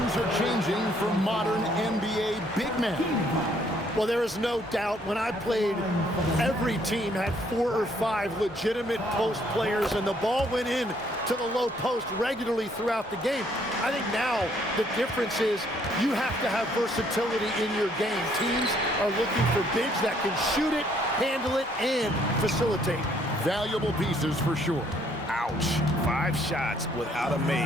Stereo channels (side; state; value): both; normal; correlation 0.66